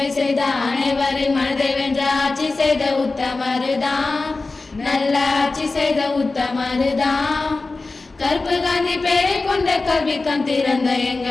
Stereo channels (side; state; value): right; quieter; 3.6 dB